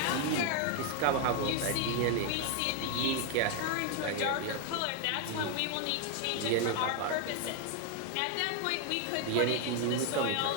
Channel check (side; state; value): both; different; correlation 0.01